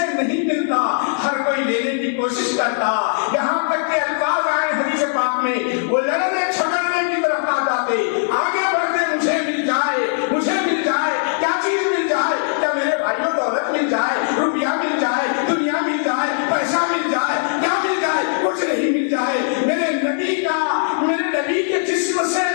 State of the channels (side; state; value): right; silent; digital silence